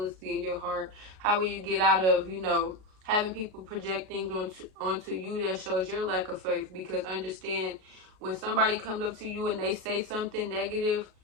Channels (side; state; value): left; late; 38 ms